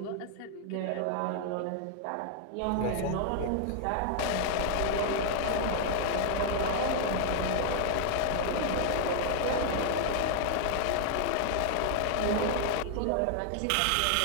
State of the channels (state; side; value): different; both; correlation 0.00